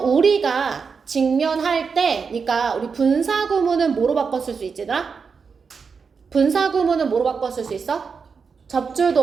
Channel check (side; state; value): left; quieter; 5.5 dB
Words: 우리가 직면할 때, 그러니까 우리 분사 구문은 뭐로 바꿨을 수 있지더라? 분사 구문은 뭐로 바꿨을 수 있어?